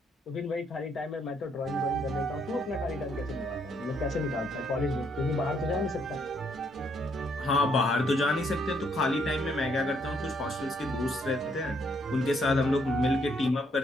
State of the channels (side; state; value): both; normal; correlation 0.71